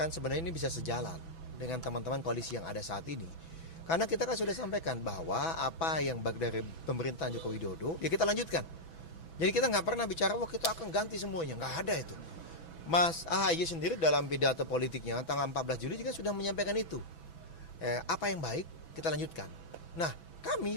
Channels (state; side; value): late; right; 6.1 ms